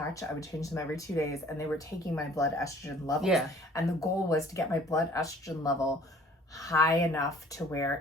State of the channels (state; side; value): normal; both; correlation 0.53